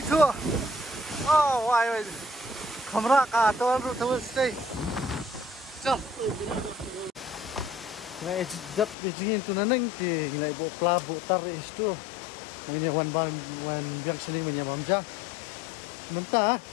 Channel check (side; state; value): right; drops out; at 9.0 s